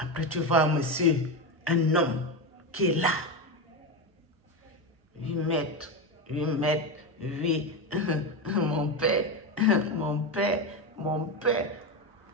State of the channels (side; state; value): both; normal; correlation 0.14